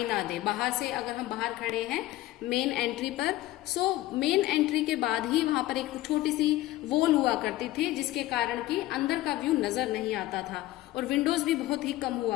ना दे। बाहर से अगर हम बाहर खड़े हैं मेन एंट्री पर, सो मेन एंट्री के बाद ही वहां पर एक छोटी सी वॉल हुआ करती थी, जिसके कारण कि अंदर का व्यू नजर नहीं आता था, और विंडोज भी बहुत ही कम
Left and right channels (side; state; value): right; quieter; 16.3 dB